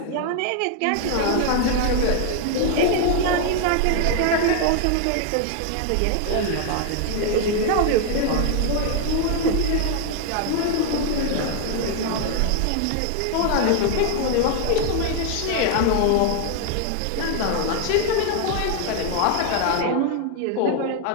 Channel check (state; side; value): different; both; correlation 0.00